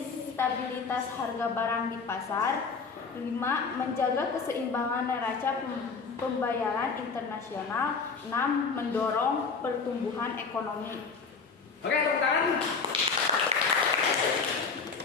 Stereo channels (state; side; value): quieter; right; 5.0 dB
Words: stabilitas harga barang di pasar. 5. Menjaga keseimbangan neraca pembayaran internasional. 6. Mendorong pertumbuhan ekonomi. Oke, tepuk tangan.